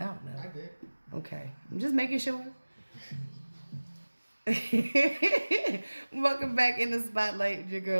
don't know. I did. Okay, I'm just making sure. Welcome back in the spotlight with your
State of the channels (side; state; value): both; inverted; correlation -1.00